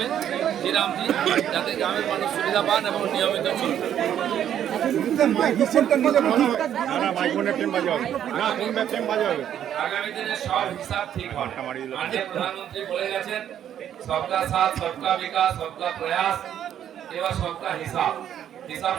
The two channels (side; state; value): left; quieter; 10.1 dB